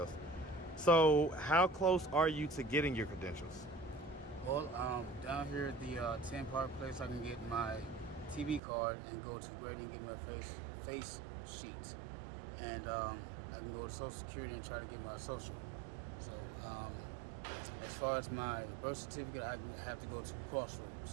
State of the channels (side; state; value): left; drops out; at 8.6 s